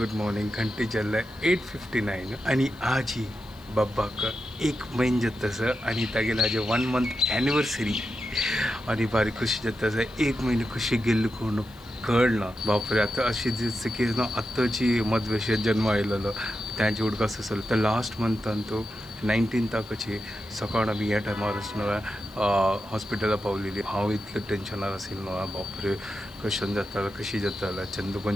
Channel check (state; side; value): noise; left; hiss, 27 dB below the sound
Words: मॉर्निंग घंटे चल्लाय 8:59 आणि आज ही बब्बाक एक महिन जतस आणि तागेला आज 1 month एनिवर्सरी आणि बारी खुशी जतस एक महिने खुशी गेल्ली कोण कळना बापरे आता अशी दिसतं की ना आत्ताची मधवेशात जन्म आयलेलो त्यांची उडकास असेल तर लास्ट मंथान तो 19 ताकची सकाळ आम्ही ह्या टायमार न्हय हॉस्पिटला पावलेली हांव इतलें टेन्शनार आशिल्लो न्हय बापरे कशें जातालें कशी जातालें